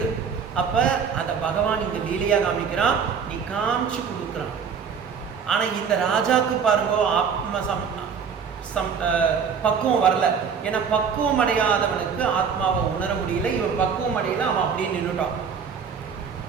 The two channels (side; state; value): left; quieter; 6.5 dB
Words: அப்போ அதை பகவான் இங்கே லீலையாக காமிக்கிறான், நீ காமிச்சு கொடுக்குறான். ஆனால் இந்த ராஜாவுக்கு பாருங்க பக்குவம் வரல. ஏன்னா பக்குவம் அடையாதவனுக்கு ஆத்மாவை உணர முடியல. இவன் பக்குவம் அடையல, அவன் அப்படியே நின்றுட்டான்.